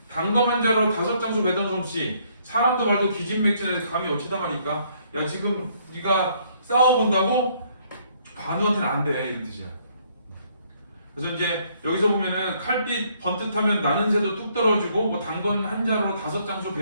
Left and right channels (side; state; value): both; inverted; correlation -0.67